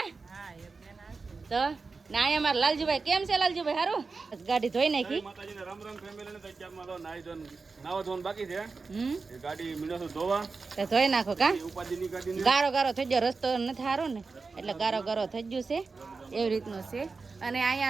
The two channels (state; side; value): quieter; left; 4.3 dB